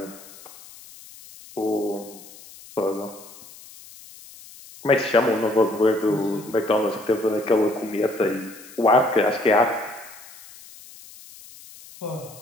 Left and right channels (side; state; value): left; noise; hiss, 20 dB below the sound